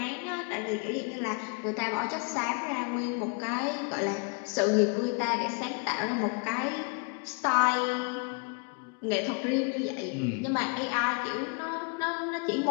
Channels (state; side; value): quieter; right; 36.5 dB